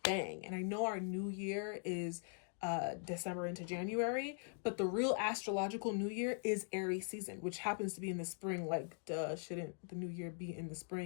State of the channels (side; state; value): right; silent; digital silence